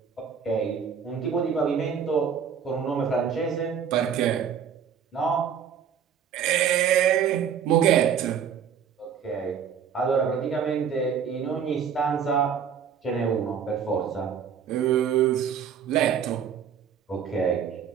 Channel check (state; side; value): quieter; left; 7.7 dB